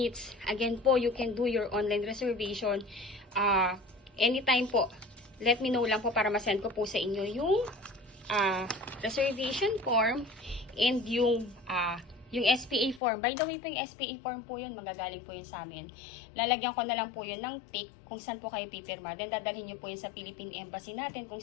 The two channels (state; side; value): drops out; right; at 13.0 s